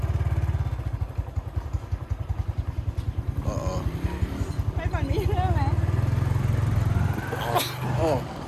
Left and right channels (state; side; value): identical; both; correlation 1.00